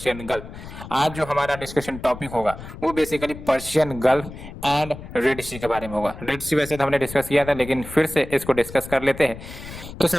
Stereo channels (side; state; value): left; noise; rumble, 13 dB below the sound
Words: Gulf. आज जो हमारा डिस्कशन टॉपिक होगा वो basically Persian Gulf and Red Sea के बारे में होगा। रेड सी वैसे तो हमने डिस्कस किया था, लेकिन फिर से इसको डिस्कस कर लेते हैं। तो